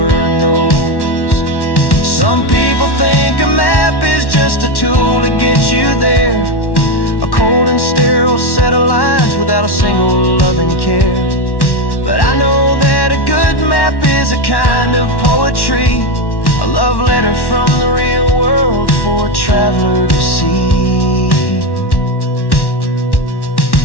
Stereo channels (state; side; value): late; right; 1.1 ms